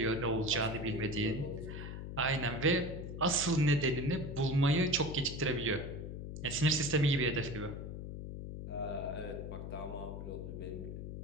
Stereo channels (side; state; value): left; noise; hum, 7 dB below the sound